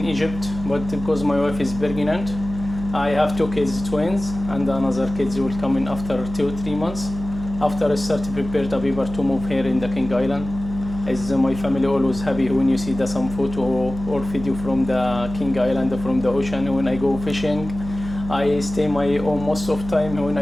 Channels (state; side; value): noise; right; hum, 10 dB below the sound